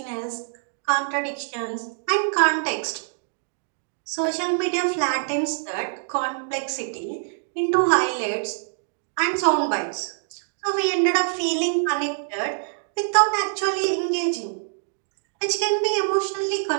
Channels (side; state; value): left; silent; digital silence